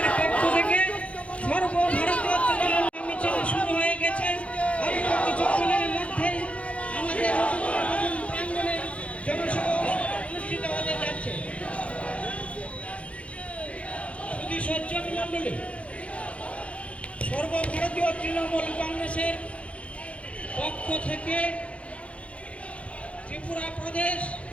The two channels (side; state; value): right; late; 0.063 ms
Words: পক্ষ থেকে সর্বভারতীয় তৃণমূল মিছিল শুরু হয়ে গেছে। অল্প কিছুক্ষণের মধ্যে আমাদের প্রাঙ্গণে জনসভা অনুষ্ঠিত হতে যাচ্ছে। শুধু সজ্জন মন্ডলী সর্বভারতীয় তৃণমূল কংগ্রেসের পক্ষ থেকে ত্রিপুরা প্রদেশ